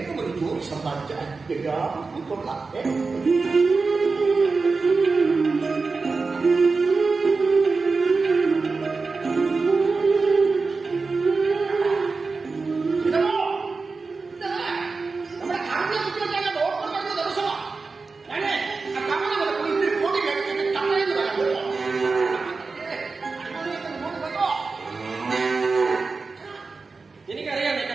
ഒരു ജോലി സമ്പാദിച്ചാൽ എല്ലാവർക്കും കൊള്ളാം. നമ്മുടെ കാറിനെ കുറിച്ച് ഡോക്ടർ പറഞ്ഞ ദിവസമാണ്. ഞാന് ആ കമ്മനെ പോയി ഇത്തിരി പൊടി കഴിച്ചിട്ട് കമ്മലെന്ന് പറയാൻ പറ്റുമോ? എനിക്കറിയാം നിന്റെ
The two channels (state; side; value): quieter; left; 4.2 dB